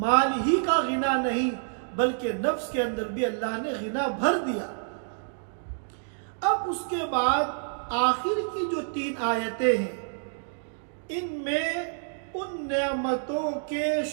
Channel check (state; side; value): silent; left; digital silence